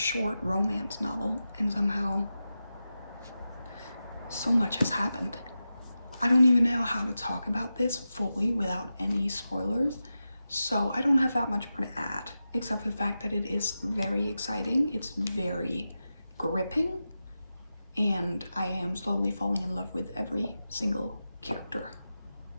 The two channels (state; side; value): inverted; both; correlation -0.92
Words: romance novel, and somehow so much has happened. I don't even know how to talk about this fully without any spoilers, so I don't have that much more to add, except for the fact that it is very exciting, it's very gripping, and I am slowly falling in love with every single character.